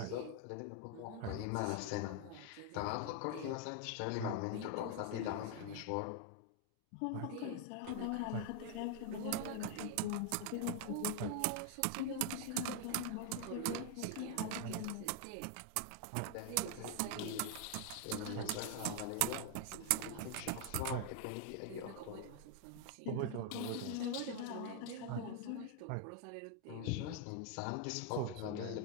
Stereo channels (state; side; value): different; both; correlation 0.00